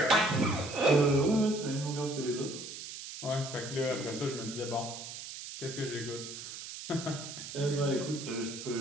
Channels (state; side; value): noise; right; hiss, 10 dB below the sound